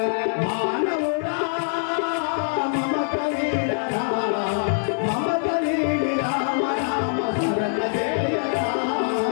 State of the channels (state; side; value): silent; right; 57 dB below the other